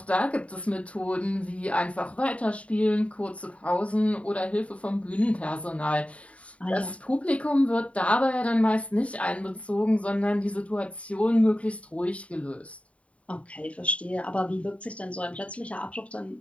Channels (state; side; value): late; right; 0.064 ms